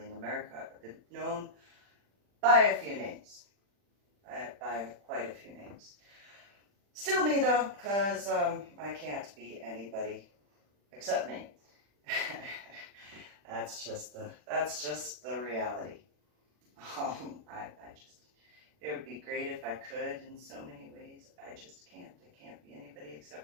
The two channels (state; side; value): late; left; 40 ms